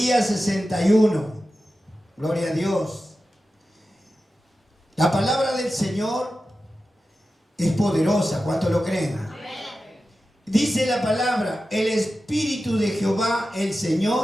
61. Gloria a Dios. La palabra del Señor es poderosa. ¿Cuántos lo creen? Dice la palabra: el Espíritu de Jehová, el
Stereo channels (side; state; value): both; normal; correlation 0.93